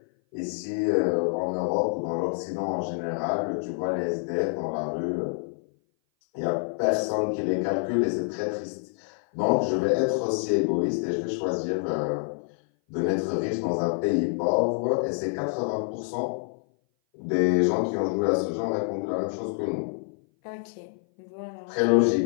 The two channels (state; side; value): silent; right; 57 dB below the other